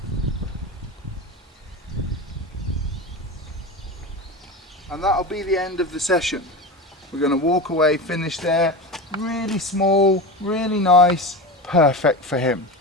And that'll be the end of the session. We're going to walk away, finish there. Really small, really nice, perfect for him.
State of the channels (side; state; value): both; normal; correlation 0.25